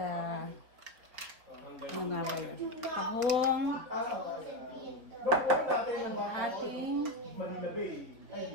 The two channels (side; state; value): left; late; 4.2 ms